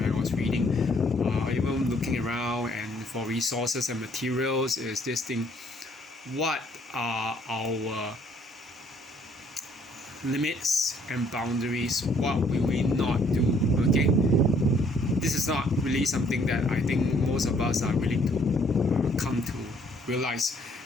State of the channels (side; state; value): both; normal; correlation 0.64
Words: I was reading, even looking around and for resources and materials, is this thing: what are our limits and boundaries? What will we not do? Okay, this is not really something that I think most of us are willing to come to realize.